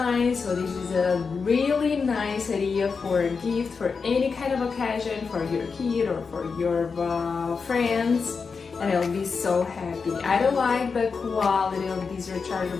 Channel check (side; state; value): right; quieter; 5.1 dB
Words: so this is a really nice idea for a gift for any kind of occasion for your kid or for your friends, and I'll be so happy. I don't like the quality of this